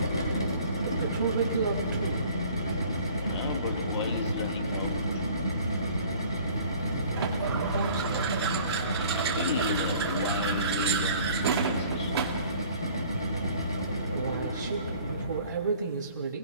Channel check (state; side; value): inverted; both; correlation -0.52